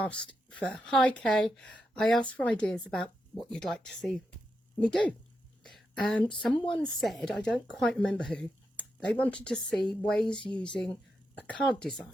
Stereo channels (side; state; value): both; normal; correlation 0.85